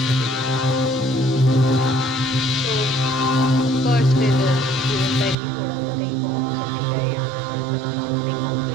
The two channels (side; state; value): left; drops out; at 5.4 s